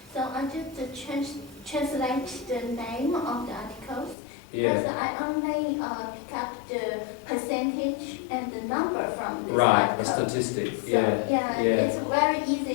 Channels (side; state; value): right; drops out; at 4.2 s